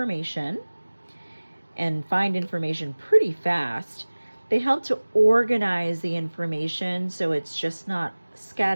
and find information pretty fast. They help to organize the information so it's just not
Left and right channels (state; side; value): inverted; both; correlation -1.00